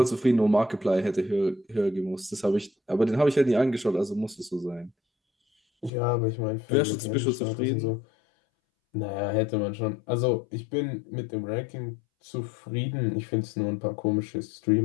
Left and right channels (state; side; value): drops out; right; at 5.9 s